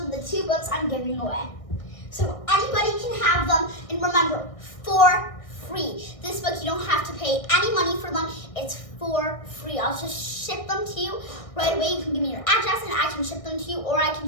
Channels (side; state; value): right; late; 1.6 ms